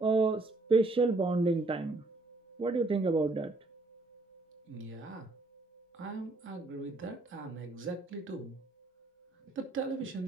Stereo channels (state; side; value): quieter; left; 3.1 dB